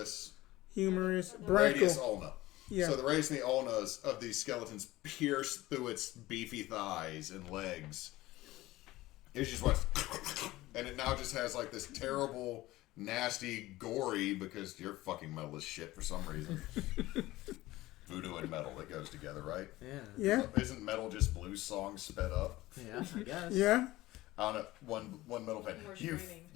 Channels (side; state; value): right; quieter; 17.7 dB